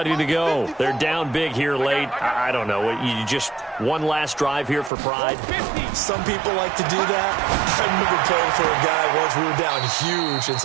to go. They're down big here late. I don't know. You just one last drive here for pride? Some people like to do that. I remember playing for a guy once. We were down huge, and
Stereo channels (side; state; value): left; drops out; at 4.9 s